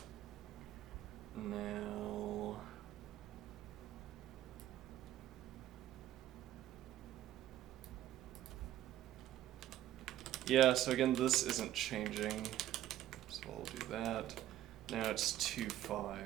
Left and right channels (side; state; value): left; quieter; 13.0 dB